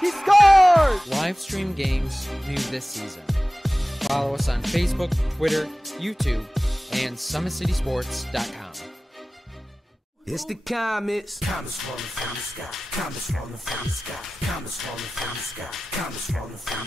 scores! Live stream games new this season. Follow us on Facebook, Twitter, YouTube, and SummitCitySports.com. It's the comets. Comets falling from the sky. Comets falling from the sky. Comets falling from the sky. Comets falling from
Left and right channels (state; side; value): normal; both; correlation 0.97